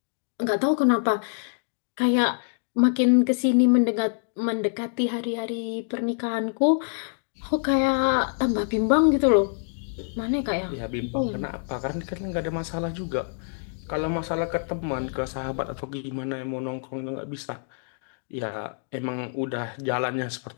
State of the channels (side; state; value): right; silent; digital silence